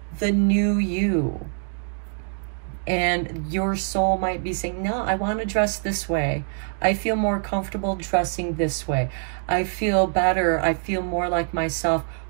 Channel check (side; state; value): left; silent; 56 dB below the other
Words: the new you. And your soul might be saying, no, I want to dress this way. I feel more comfortable dressing this way. I feel better. I feel more like myself